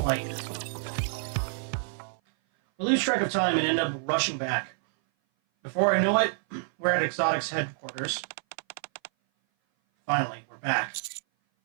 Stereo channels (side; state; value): left; silent; 57 dB below the other